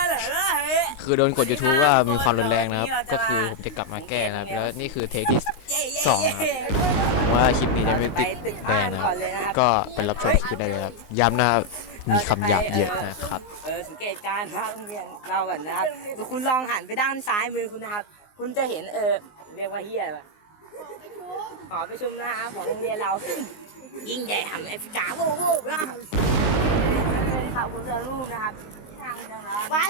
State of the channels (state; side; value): late; right; 19 ms